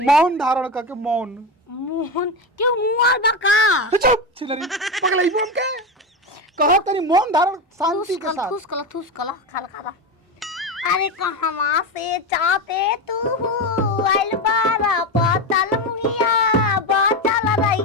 मौन धारण करके मौन। मोहन क्यों मुआ बका चुप छिलरी पगलाई बोल के कहो तनी मौन धारण शांति के साथ। थूस कला खाला खाला। अरे कहवा से चाहते तू आइल बारा पतल मुहिया बचल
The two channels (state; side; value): normal; both; correlation 0.17